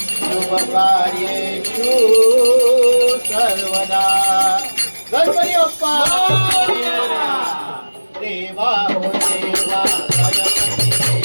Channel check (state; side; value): inverted; both; correlation -1.00